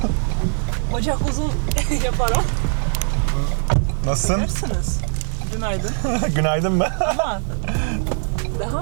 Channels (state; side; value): silent; left; 57 dB below the other